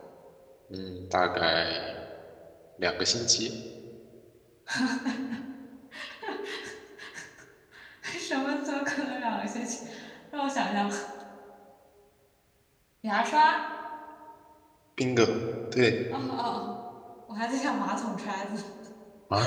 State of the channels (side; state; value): both; identical; correlation 1.00